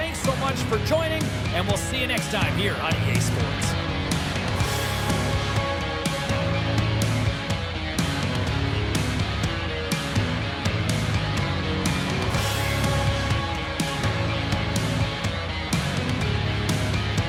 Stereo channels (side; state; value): both; identical; correlation 1.00